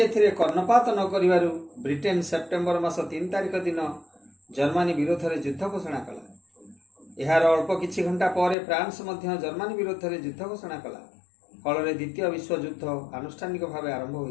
ଏଥିରେ କର୍ଣ୍ଣପାତ ନ କରିବାରୁ ବ୍ରିଟେନ ସେପ୍ଟେମ୍ବର ମାସ 3 ତାରିଖ ଦିନ ଜର୍ମାନୀ ବିରୋଧରେ ଯୁଦ୍ଧ ଘୋଷଣା କଲା। ଏହାର ଅଳ୍ପ କିଛି ଘଣ୍ଟା ପରେ ଫ୍ରାନ୍ସ ମଧ୍ୟ ଜର୍ମାନୀ ବିରୋଧରେ ଯୁଦ୍ଧ ଘୋଷଣା କଲା। ଫଳରେ ଦ୍ୱିତୀୟ ବିଶ୍ୱଯୁଦ୍ଧ ଆନୁଷ୍ଠାନିକ ଭାବେ ଆରମ୍ଭ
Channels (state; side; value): drops out; right; at 8.6 s